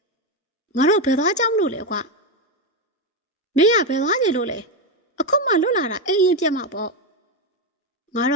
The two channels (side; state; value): both; normal; correlation 0.10